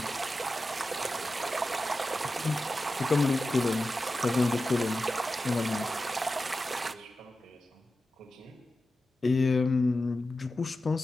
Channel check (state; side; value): normal; both; correlation 0.93